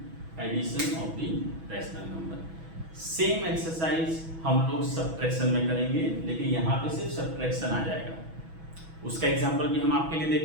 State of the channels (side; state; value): left; late; 6.1 ms